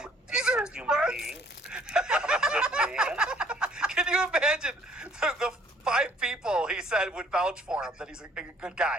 a decent human being. I'm a good man. Can you imagine the 5 people he said would vouch for him, that he's a good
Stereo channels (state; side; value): normal; both; correlation 0.60